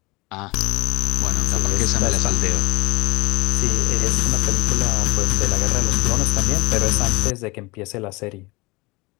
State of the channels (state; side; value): quieter; right; 24.2 dB